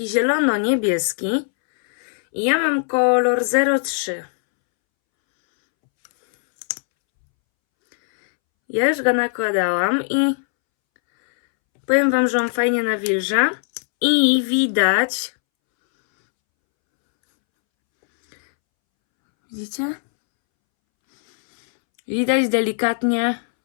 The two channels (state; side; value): silent; right; 66 dB below the other